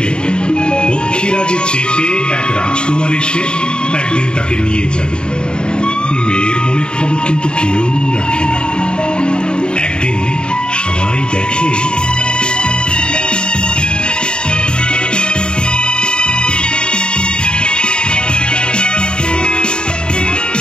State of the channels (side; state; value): right; late; 0.050 ms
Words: পক্ষীরাজে চেপে এক রাজকুমার এসে একদিন তাকে নিয়ে যাবে। মেয়ের মনের খবর কিন্তু কেউ রাখে না। একদিন সবাই দেখে